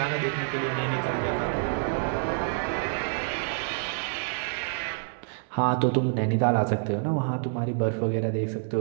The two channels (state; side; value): silent; left; 60 dB below the other